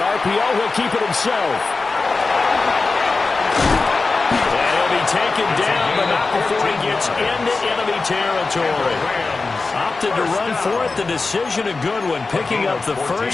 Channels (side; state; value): right; quieter; 3.9 dB